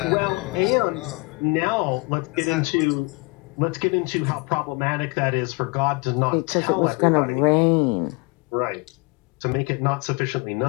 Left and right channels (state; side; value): quieter; right; 28.8 dB